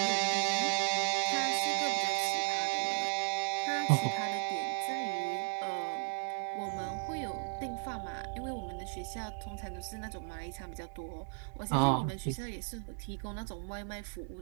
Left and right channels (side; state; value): left; silent; 54 dB below the other